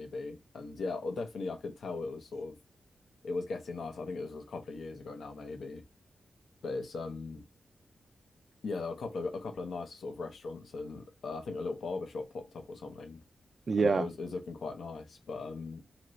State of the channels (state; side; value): normal; both; correlation 0.86